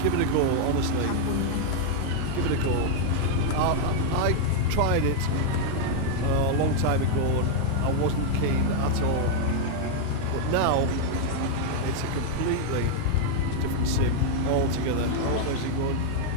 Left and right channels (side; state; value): both; different; correlation 0.00